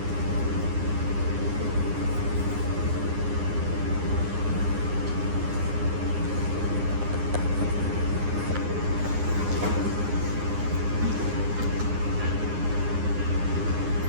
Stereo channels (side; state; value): left; late; 9.7 ms